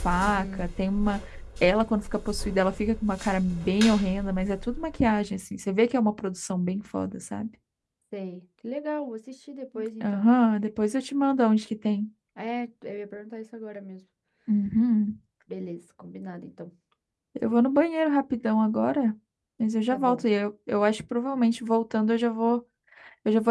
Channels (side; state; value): both; identical; correlation 1.00